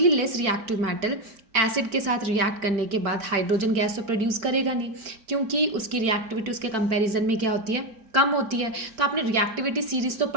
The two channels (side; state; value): left; late; 4.5 ms